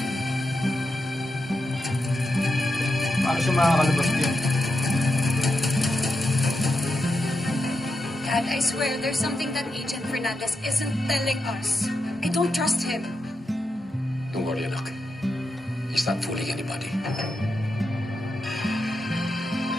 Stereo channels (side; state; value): both; normal; correlation 0.86